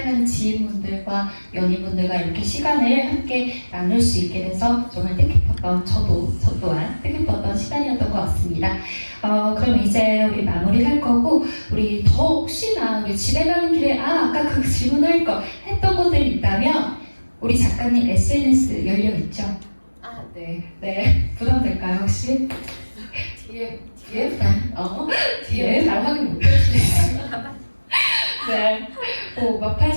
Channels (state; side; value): inverted; both; correlation -1.00